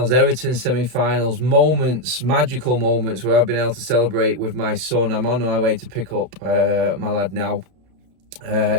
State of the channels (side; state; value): left; late; 32 ms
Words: Everton semi-finals, moments, magical moments where I've been able to celebrate with my son. I'm on my way to pick up my lad now.